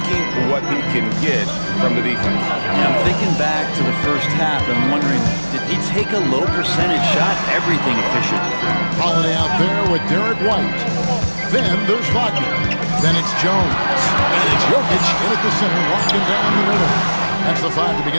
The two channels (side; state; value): both; inverted; correlation -1.00